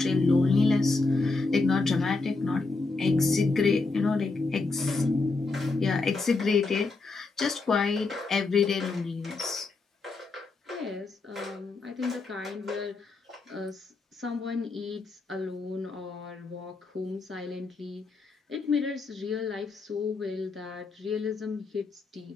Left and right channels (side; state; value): right; quieter; 3.8 dB